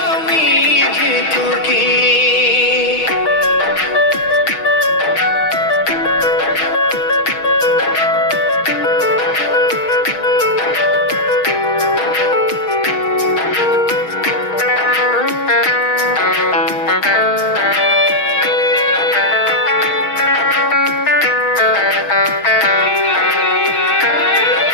আমি যে তোকে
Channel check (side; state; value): right; late; 6.3 ms